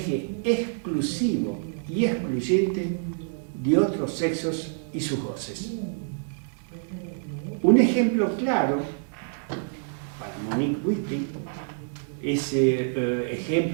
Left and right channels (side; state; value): left; silent; 59 dB below the other